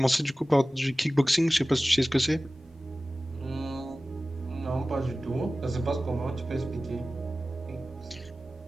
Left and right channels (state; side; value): normal; both; correlation 0.96